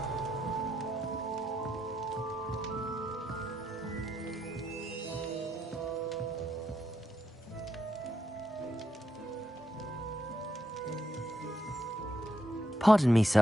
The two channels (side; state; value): both; normal; correlation 0.80